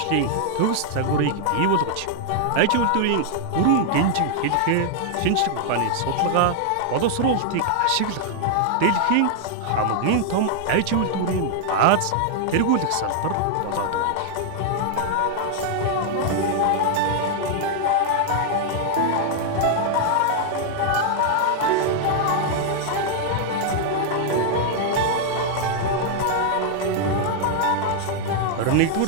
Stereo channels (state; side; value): different; both; correlation -0.01